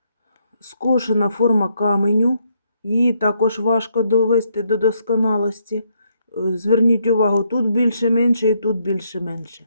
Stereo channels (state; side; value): inverted; both; correlation -0.74